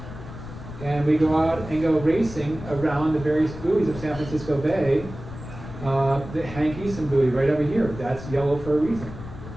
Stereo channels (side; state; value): left; noise; rumble, 12 dB below the sound